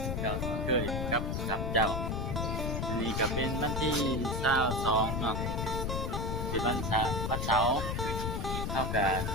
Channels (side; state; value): left; noise; rumble, 1 dB below the sound